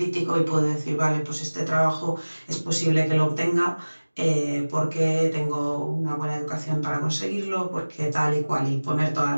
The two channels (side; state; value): both; inverted; correlation -1.00